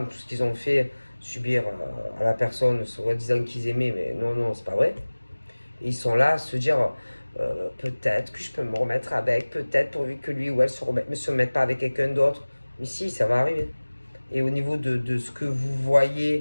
tout ce qu'ils ont fait subir à la personne, soi-disant qu'ils aimaient, mais non, c'est pas vrai. Et ils sont là à se dire, peut-être que je peux me remettre avec, peut-être pourvu que lui ou elle ne se remette pas avec quelqu'un d'autre. Mais si, ça va arriver. Et au niveau de ce que vous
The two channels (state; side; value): inverted; both; correlation -1.00